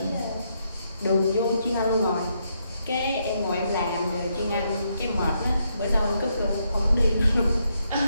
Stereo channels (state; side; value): inverted; both; correlation -0.78